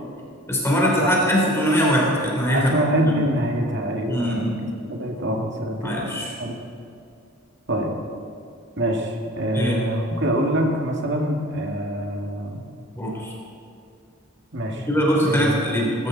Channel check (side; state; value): both; normal; correlation 0.47